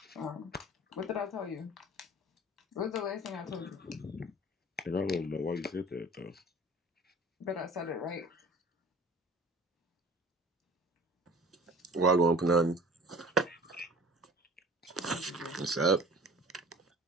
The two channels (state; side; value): normal; both; correlation 0.45